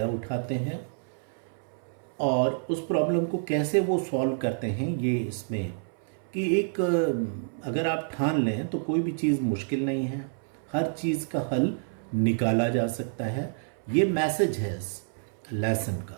उठाते हैं और उस प्रॉब्लम को कैसे वो सॉल्व करते हैं, ये इसमें कि एक अगर आप ठान लें तो कोई भी चीज़ मुश्किल नहीं है, हर चीज़ का हल निकाला जा सकता है। ये मैसेज है इस लेसन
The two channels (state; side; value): silent; left; 59 dB below the other